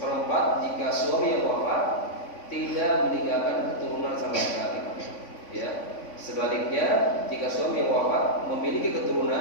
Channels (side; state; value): right; late; 3.5 ms